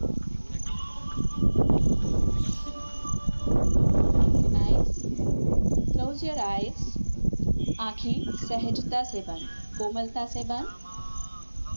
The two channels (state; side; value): inverted; both; correlation -1.00